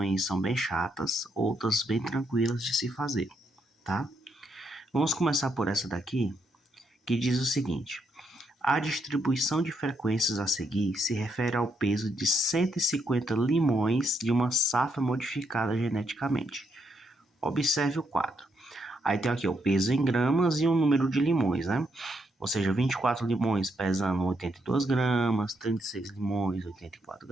são bem chatas, outras bem tranquilas de se fazer, tá? Vamos começar por essa daqui, que diz o seguinte: a distribuição de frequências a seguir se refere ao peso de 150 limões de uma safra modificada geneticamente. Observe o quadro. Aí tem aqui o peso em gramas e o número de limões, né? Ou seja, 24 limões pesando 82 gramas, 36 limões, 84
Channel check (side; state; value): both; normal; correlation 0.78